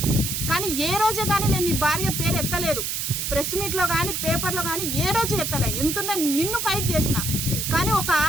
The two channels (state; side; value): noise; right; hiss, 2 dB below the sound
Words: కానీ ఏ రోజే కానీ నేను నీ భార్య పేరు ఎత్తలేదు, ప్రెస్ మీట్లో కానీ పేపర్లో కానీ ఏ రోజు ఎత్తలే. ఎంతున్నా నిన్ను ఫైట్ చేసిన, కానీ ఒక